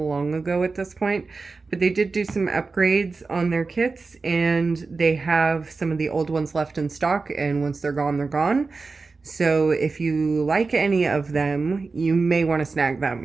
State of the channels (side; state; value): left; quieter; 4.1 dB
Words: ago at this point, but they did do some upgrades on their kits, and they have some of the old ones left in stock, and once they're gone, they're gone. So if you like any of them, you may want to snag